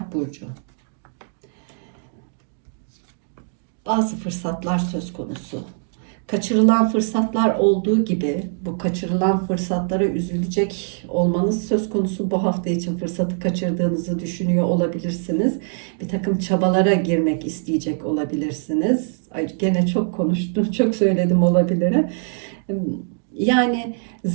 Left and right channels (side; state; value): left; silent; digital silence